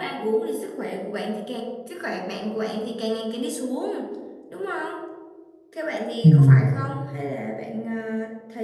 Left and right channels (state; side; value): identical; both; correlation 1.00